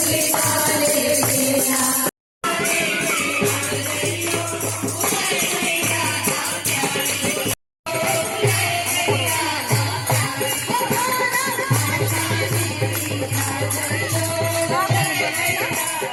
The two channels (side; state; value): both; identical; correlation 1.00